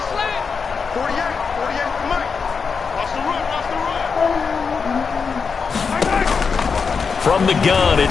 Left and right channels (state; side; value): quieter; right; 5.5 dB